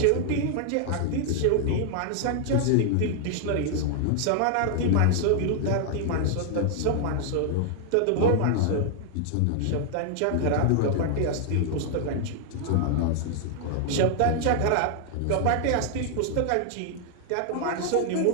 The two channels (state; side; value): different; both; correlation 0.00